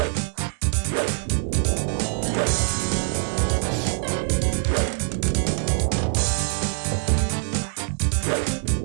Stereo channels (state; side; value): silent; left; digital silence